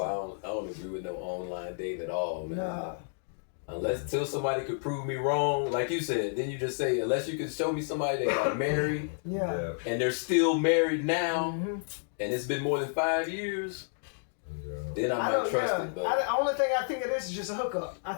I don't agree with no online dating at all, man. Nah. Unless till somebody could prove me wrong, like you said, then you just say unless you can show me somebody that got married Yeah. and they're still married now, Mhm. and it's been more than 5 years, then I might don't- trust yeah. it. But The only thing I think of this is just a hookup. I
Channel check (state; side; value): silent; right; digital silence